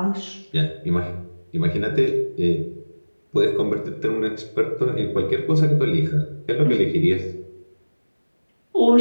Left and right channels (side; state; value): both; inverted; correlation -1.00